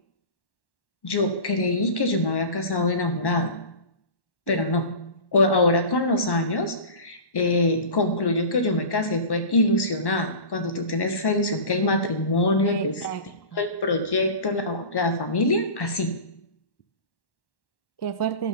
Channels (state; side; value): late; right; 1.1 ms